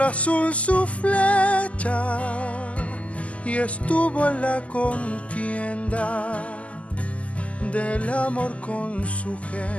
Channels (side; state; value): right; late; 0.066 ms